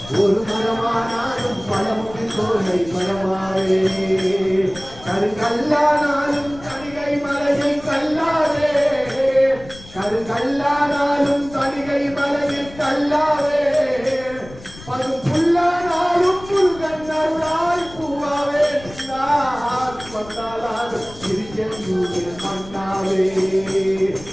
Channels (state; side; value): noise; left; rumble, 18 dB below the sound